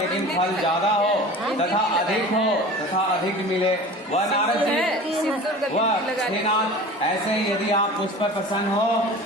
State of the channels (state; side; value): normal; both; correlation 0.38